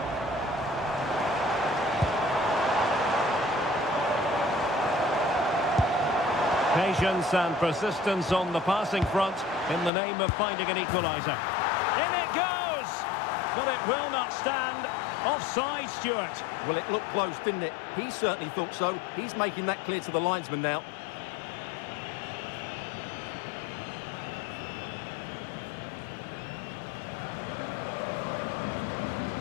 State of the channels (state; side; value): drops out; right; at 9.9 s